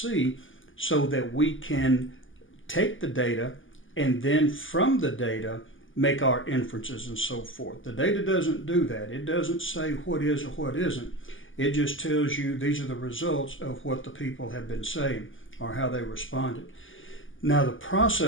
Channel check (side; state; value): right; late; 0.58 ms